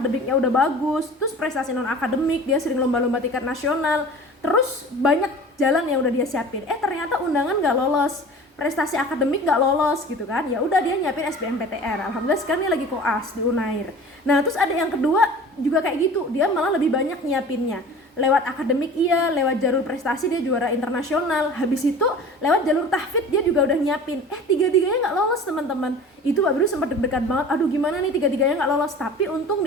udah bagus, terus prestasi non akademik, dia sering lomba-lomba tingkat nasional, terus banyak jalan yang udah dia siapin. Ternyata undangan nggak lolos, prestasi akademik nggak lolos gitu kan. Ya udah dia nyiapin SBMPTN. Alhamdulillah sekarang dia lagi koas di Unair. Nah, terus ada yang kedua juga kayak gitu, dia malah lebih banyak nyiapinnya. Lewat akademik iya, lewat jalur prestasi dia juara internasional. Habis itu lewat jalur tahfidz dia juga udah nyiapin. Tiga-tiganya nggak lolos teman-teman. Itu Mbak Biru sempat deg-degan banget. Aduh gimana nih tiga-tiganya nggak lolos. Tapi untung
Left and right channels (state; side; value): normal; both; correlation 0.40